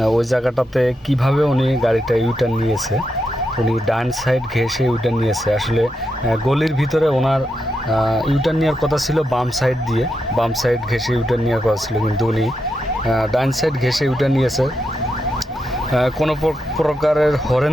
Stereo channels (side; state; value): both; normal; correlation 0.84